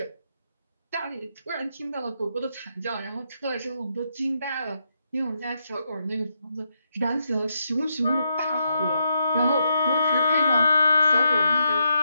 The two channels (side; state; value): both; inverted; correlation -0.80